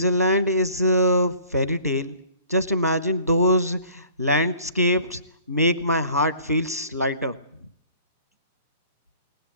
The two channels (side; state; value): both; inverted; correlation -0.52